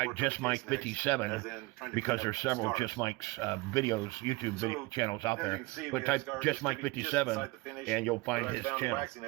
Just Mike 57 because there's several Just Mike's videos, YouTube channels out there. But type Just Mike 57 and you'll find his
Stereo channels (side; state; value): left; quieter; 23.0 dB